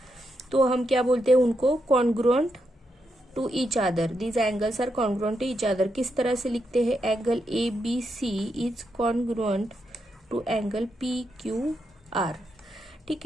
तो हम क्या बोलते हैं उनको, congruent to each other. These angles are congruent to each other. किस तरह से लिखते हैं, angle ABC is congruent to angle PQR। ठीक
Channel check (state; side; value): normal; both; correlation 0.83